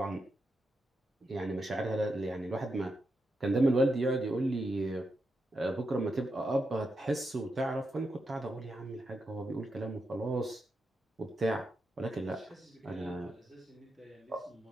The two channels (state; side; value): normal; both; correlation 0.86